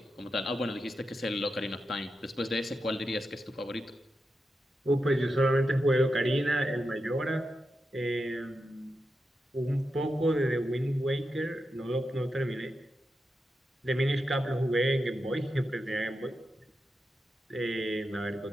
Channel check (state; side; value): normal; both; correlation 0.88